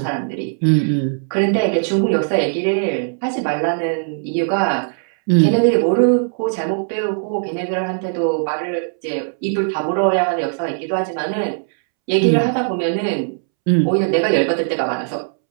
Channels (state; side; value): silent; left; 67 dB below the other